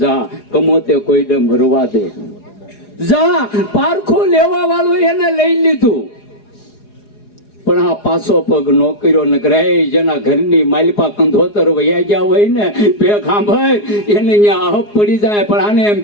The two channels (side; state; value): right; late; 4.8 ms